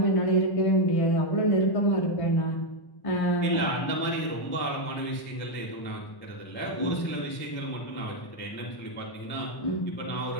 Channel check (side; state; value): right; late; 1.1 ms